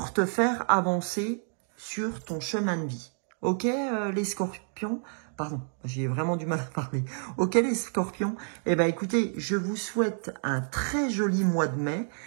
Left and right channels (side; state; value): left; silent; 57 dB below the other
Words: te faire avancer sur ton chemin de vie. Ok, les Scorpions? Pardon, j'ai vraiment du mal à parler. Ok, les Scorpions? Eh ben, écoutez, je vous souhaite un très joli mois de mai.